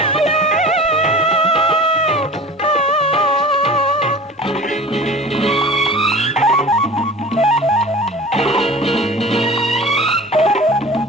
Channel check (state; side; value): normal; both; correlation 0.40